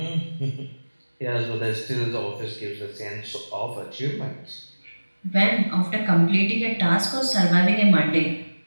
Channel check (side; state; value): both; inverted; correlation -1.00